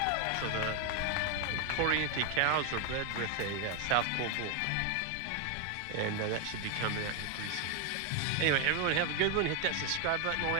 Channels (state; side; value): different; both; correlation 0.01